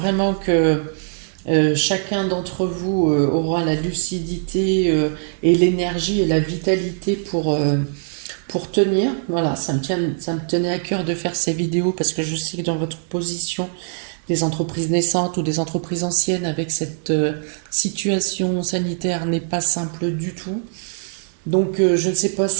que chacun d'entre vous aura la lucidité et l'énergie et la vitalité pour tenir. Voilà, ça me tenait à cœur de faire ces vidéos parce que je sais que dans votre position, des entreprises naissantes ou des entreprises anciennes avec cette situation sanitaire n'est pas simple du tout. Donc je ne sais pas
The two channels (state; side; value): silent; left; digital silence